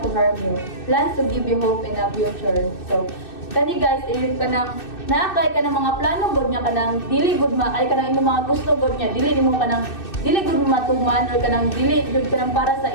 to harm you. Plans to give you hope in a future. So, kani guys, ayun ka nang naakay ka ng mga plano god niya kanang dili gud maakay ka ng imong mga gusto god niya dili nimo kanang dili gud matuman or kanang dili jud kanang para sa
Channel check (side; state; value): right; late; 2.6 ms